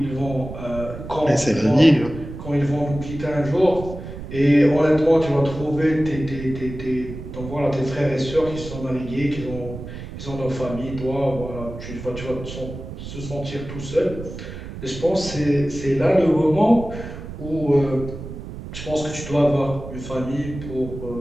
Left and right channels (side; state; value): right; noise; rumble, 10 dB below the sound